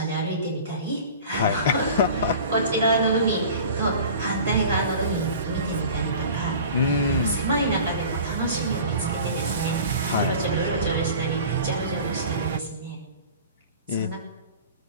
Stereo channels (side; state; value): both; inverted; correlation -0.41